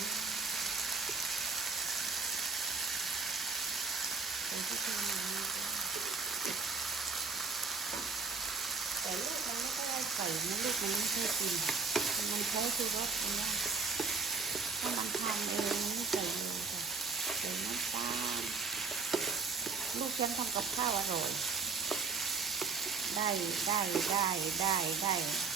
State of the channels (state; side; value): quieter; left; 4.7 dB